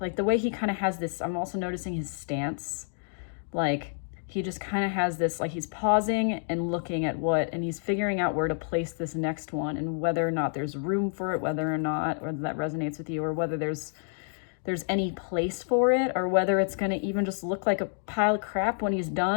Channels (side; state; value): right; silent; digital silence